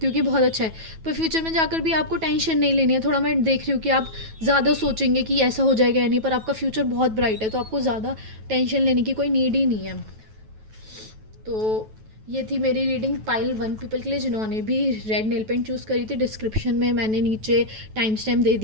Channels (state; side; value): late; left; 9.2 ms